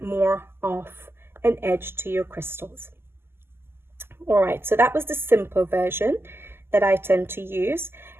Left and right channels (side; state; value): left; late; 0.12 ms